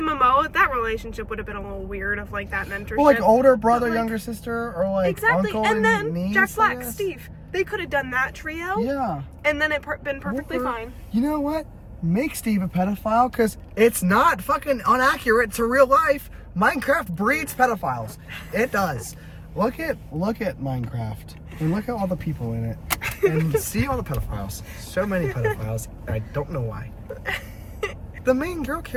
Momoa, that relationship would have been a little weird of like that mentorship. Well, like older brother, like, younger sister, or like exactly. uncle and then niece, Jack Black, Steve. They could have done that trio. Yeah. And then it been perfectly fine. You know what? Make Steve a pedophile, because it's not fucking inaccurate to real life. Minecraft breeds pedophiles. It does. Look at Minecraft and look at all the people in it and see all the pedophiles. So many pedophiles. I don't know why. The main girl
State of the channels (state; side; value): identical; both; correlation 1.00